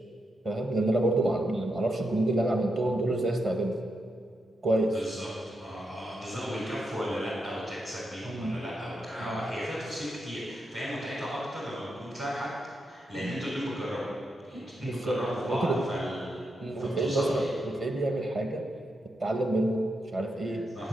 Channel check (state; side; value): normal; both; correlation 0.83